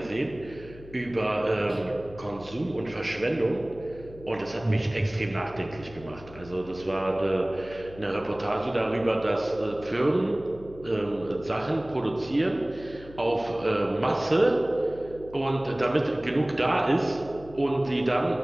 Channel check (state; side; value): noise; left; hum, 18 dB below the sound